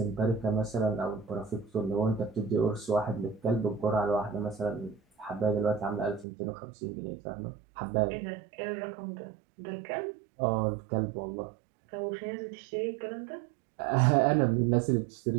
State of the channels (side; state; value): left; drops out; at 6.2 s